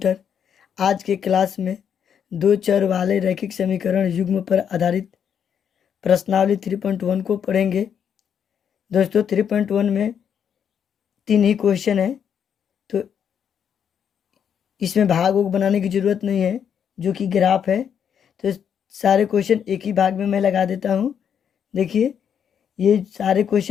आज के class में दो चर वाले रैखिक समीकरण युग्म पर आधारित प्रश्नावली 3.1 को पढ़ेंगे। दोस्तों 3.1 में 3 ही क्वेश्चन है, तो इसमें भाग वोग बनाने की ज़रूरत नहीं है, जो कि ग्राफ है। तो सारे क्वेश्चन एक ही भाग में मैं लगा देता हूँ। देखिए ये सारे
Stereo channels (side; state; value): right; quieter; 8.1 dB